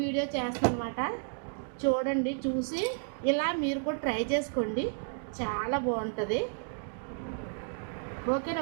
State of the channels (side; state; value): left; silent; digital silence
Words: వీడియో చేస్తాను అనమాట. చూడండి, చూసి ఇలా మీరు కూడా ట్రై చేసుకోండి, చాలా బాగుంటుంది. ఓకేనా